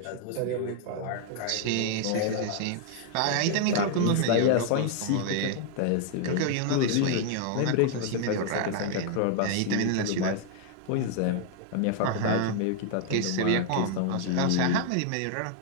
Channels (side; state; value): both; different; correlation 0.00